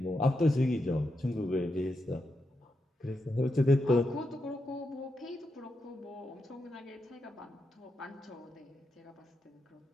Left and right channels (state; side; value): normal; both; correlation 0.85